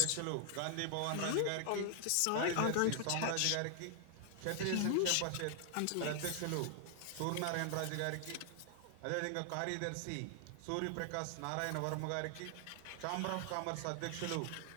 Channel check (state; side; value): different; both; correlation 0.00